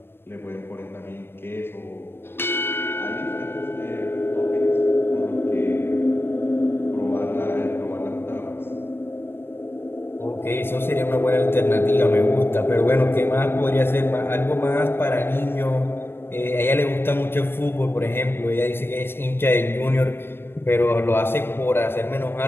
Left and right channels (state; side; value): late; right; 0.11 ms